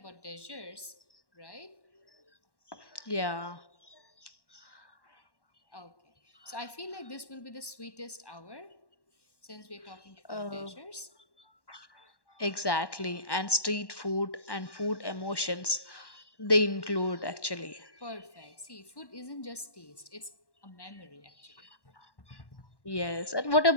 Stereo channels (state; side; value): late; right; 1.1 ms